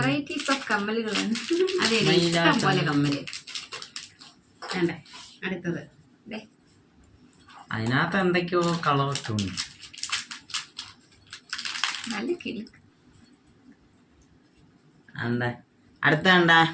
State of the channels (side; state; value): both; identical; correlation 1.00